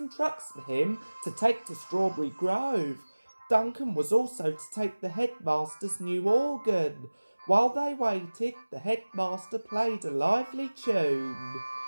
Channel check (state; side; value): inverted; both; correlation -1.00